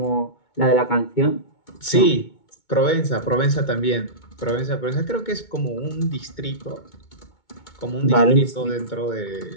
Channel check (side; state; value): right; late; 2.2 ms